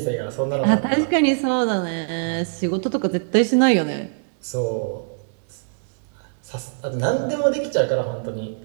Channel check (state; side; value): silent; left; digital silence